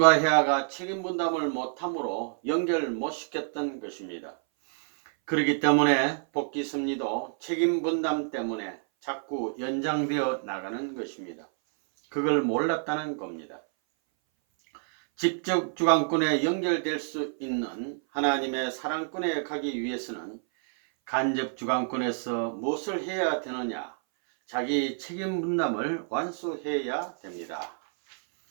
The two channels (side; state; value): left; silent; 58 dB below the other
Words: 헤아가 책임분담을 못함으로 연결 못 시켰던 것입니다. 그렇기 때문에 복귀섭리도 책임분담 때문에 자꾸 연장되어 나가는 것입니다. 그걸 몰랐다는 겁니다. 직접주관권에 연결될 수 있는 하나님의 사랑권에 가기 위해서는 간접주관권에서 무엇을 해야 되느냐? 자기 책임분담을 완수해야 됩니다.